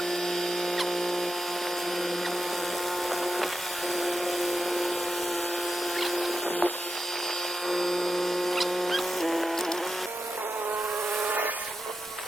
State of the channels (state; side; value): normal; both; correlation 0.89